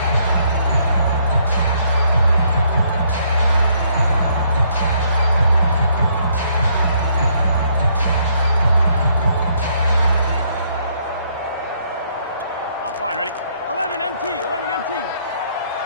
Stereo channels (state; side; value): inverted; both; correlation -0.69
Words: Fine, ready? 11 MT, 11 MT.